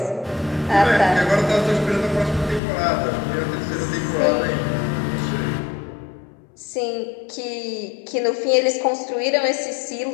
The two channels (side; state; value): right; drops out; at 2.6 s